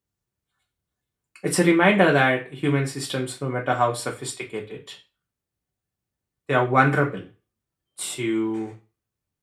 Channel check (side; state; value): both; identical; correlation 1.00